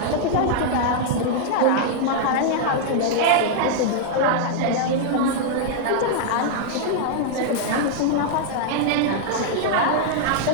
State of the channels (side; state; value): both; different; correlation -0.01